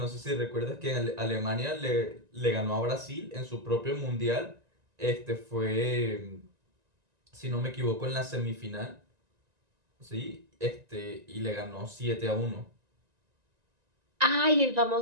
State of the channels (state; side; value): late; left; 1.9 ms